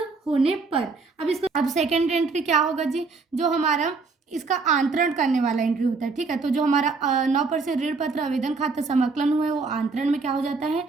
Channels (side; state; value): left; quieter; 4.3 dB